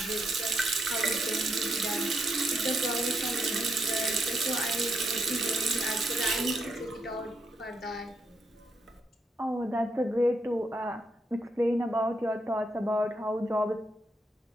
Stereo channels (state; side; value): normal; both; correlation 0.80